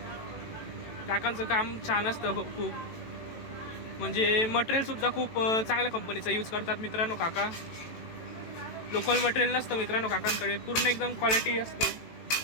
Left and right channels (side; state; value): right; late; 18 ms